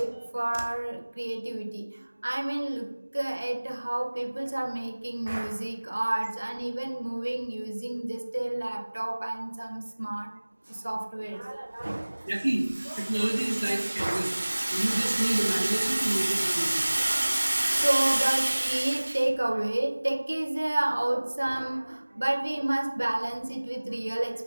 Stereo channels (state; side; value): inverted; both; correlation -1.00